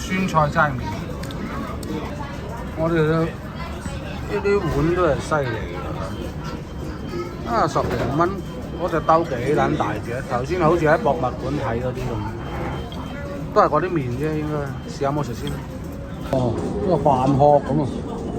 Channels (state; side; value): identical; both; correlation 1.00